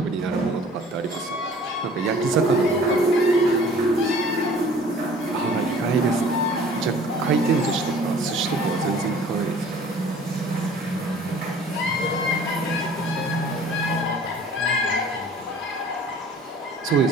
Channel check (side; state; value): both; normal; correlation 0.50